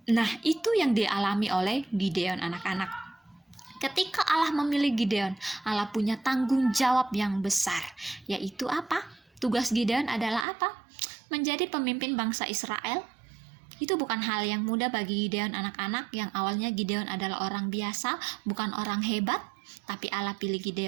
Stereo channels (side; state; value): left; drops out; at 10.5 s